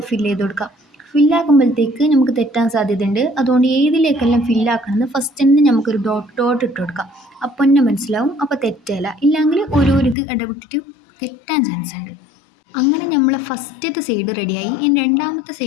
ഫില്ല് ചെയ്ത് കൊടുക്കുക. ഫില്ലാക്കുമ്പോഴത്തേക്ക് നമുക്ക് തെറ്റാൻ സാധ്യതയുണ്ട്. അതുകൊണ്ട് ഏതിലേക്കെല്ലാം ഫില്ലാക്കണമെന്ന് ഫസ്റ്റ് തന്നെ നമുക്കൊരു ഡോട്ട് ഡോട്ട് ഇട്ട് കൊടുക്കാം. അപ്പം തന്നെ മനസ്സിലാവും. അപ്പോൾ തെറ്റല്ല. ഇല്ലെങ്കിൽ ഓരോരു ഇത് ഇടവിട്ടിട്ട് തെറ്റാൻ ചാൻസ് ഉണ്ട്. അങ്ങനെ നമ്മളെ ഫസ്റ്റത്തെ സൈഡ് റെഡിയായി. ഇനി രണ്ടാമത്തെ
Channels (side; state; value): right; drops out; at 10.2 s